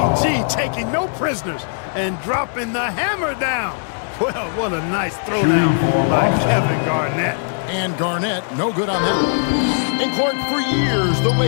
taking no prisoners and dropping the hammer down. Well, what a nice throwdown by Kevin Garnett. And Garnett, no good on that one. And Clark, for years, the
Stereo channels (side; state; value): right; silent; digital silence